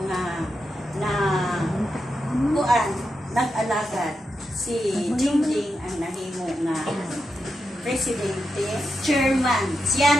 nga na kuan nag-alagad si Jingjing ang nahimo nga presidente, chairman. Siya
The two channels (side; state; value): both; normal; correlation 0.87